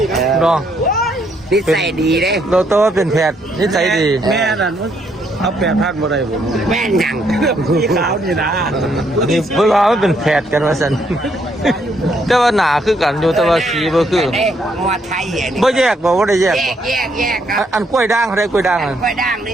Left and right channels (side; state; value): both; normal; correlation 0.72